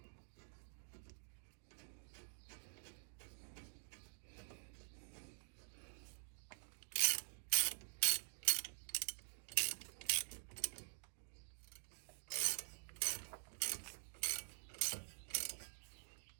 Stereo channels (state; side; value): silent; left; digital silence